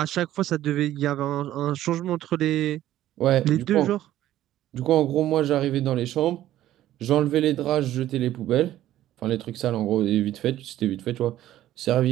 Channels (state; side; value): quieter; left; 13.4 dB